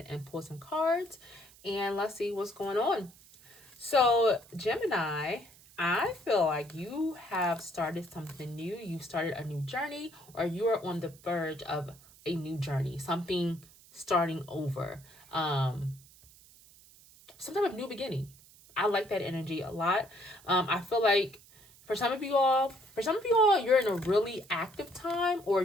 and pulled some cards and let's see what's going on. So, Gemini, I feel like you have started something new. You've started a new journey, or you are on the verge of a new journey, something starting over, some type of new beginning. I like that energy a lot. I feel like for some of you all, you're in a really active time, or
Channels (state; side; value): noise; right; hiss, 24 dB below the sound